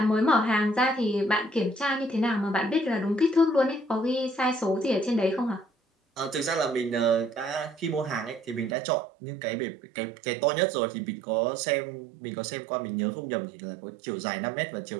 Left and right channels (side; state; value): left; drops out; at 8.8 s